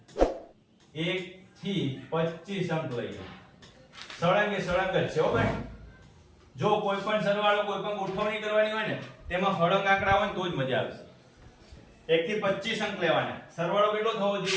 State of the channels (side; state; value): both; identical; correlation 1.00